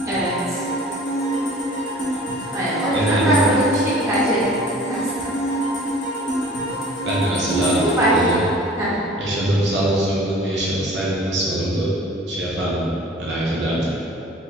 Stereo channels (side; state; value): both; normal; correlation 0.46